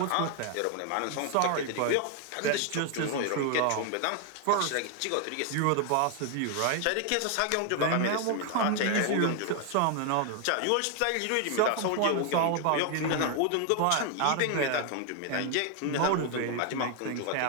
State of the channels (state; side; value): different; both; correlation 0.00